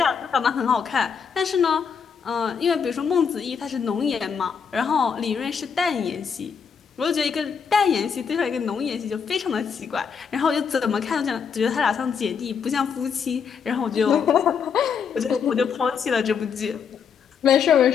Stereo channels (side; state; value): right; quieter; 6.5 dB